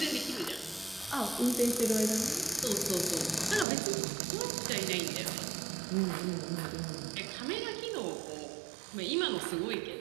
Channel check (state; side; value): drops out; left; at 3.7 s